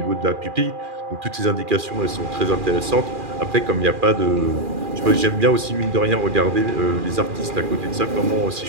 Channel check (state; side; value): late; left; 2.4 ms